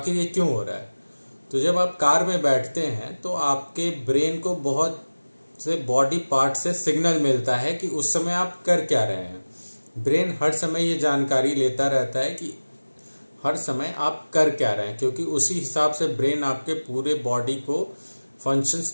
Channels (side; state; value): both; inverted; correlation -1.00